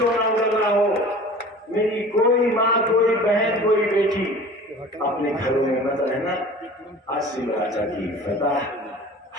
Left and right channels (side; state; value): both; normal; correlation 0.43